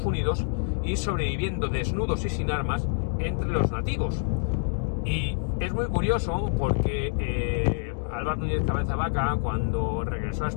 Unidos y sobreviviendo desnudos y sin armas entre los nativos. Y es muy curioso porque Álvar Núñez Cabeza de Vaca, cuando regresó a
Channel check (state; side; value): silent; right; digital silence